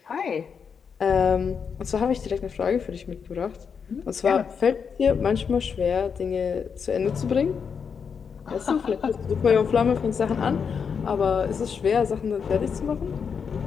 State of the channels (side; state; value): right; quieter; 6.4 dB